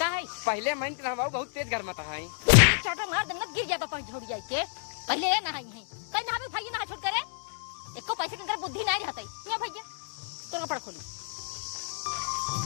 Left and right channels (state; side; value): silent; right; digital silence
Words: है पहले मैं हमारा बहुत तेज घर में था। एक चाटा मार देना गिर जाता पानी झोड़ जाए के, पहले ये नहाई है कहीं नहावे भैया नहा छोड़ करे, एको पैसे के अंदर बुद्धि नहीं रहता है भैया। तो कपड़ा खोली